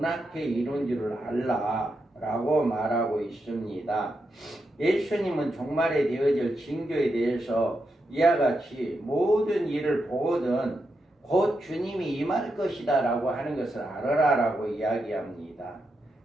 앞에 이룬 줄을 알라 라고 말하고 있습니다. 예수님은 종말에 되어질 징조에 대해서 이와 같이 모든 일을 보거든 곧 주님이 임할 것이다 라고 하는 것을 알아라 라고 이야기합니다.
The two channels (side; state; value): both; normal; correlation 0.85